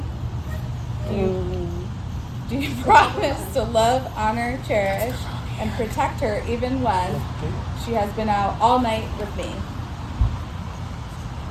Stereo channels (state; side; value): identical; both; correlation 1.00